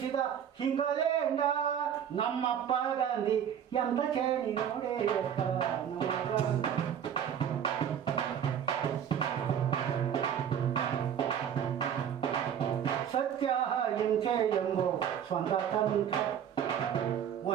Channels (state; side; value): quieter; left; 8.9 dB